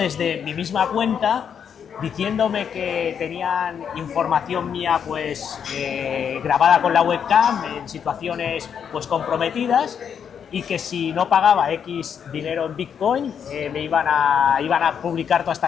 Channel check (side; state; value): right; quieter; 7.7 dB